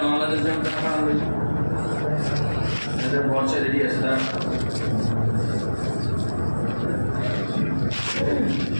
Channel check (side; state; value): both; inverted; correlation -1.00